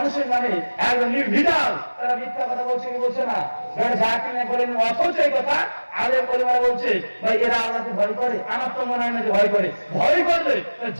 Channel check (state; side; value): inverted; both; correlation -1.00